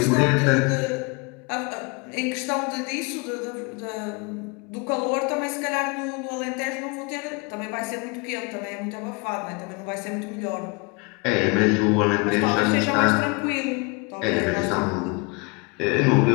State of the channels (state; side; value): quieter; right; 29.8 dB